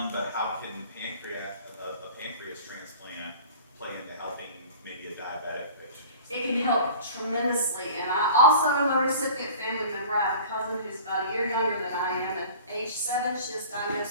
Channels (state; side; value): inverted; both; correlation -0.43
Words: but how can a pancreas transplant play into helping maybe a diabetic patient? It can help tremendously, and I also am a recipient family member. I have a cousin who's about a year younger than I am, and age 7, she was